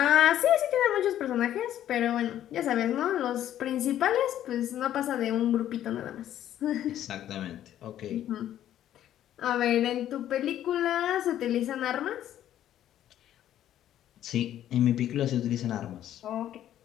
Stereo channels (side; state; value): right; quieter; 11.7 dB